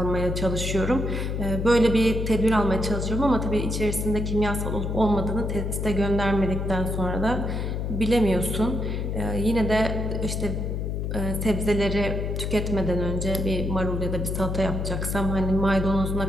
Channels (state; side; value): noise; left; hum, 2 dB below the sound